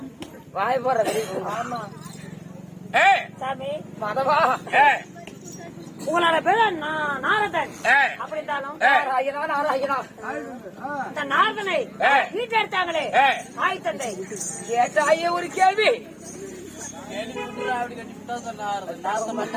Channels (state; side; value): identical; both; correlation 1.00